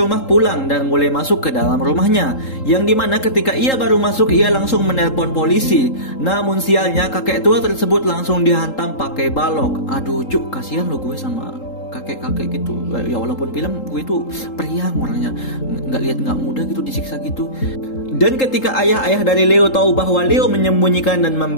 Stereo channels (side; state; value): right; late; 3.8 ms